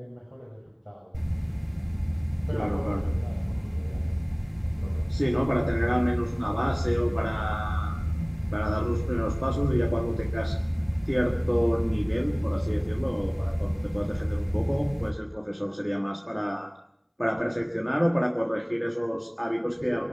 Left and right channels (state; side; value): identical; both; correlation 1.00